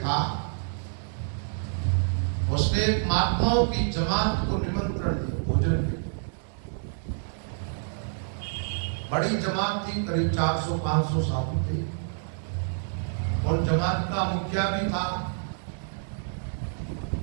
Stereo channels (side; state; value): left; silent; digital silence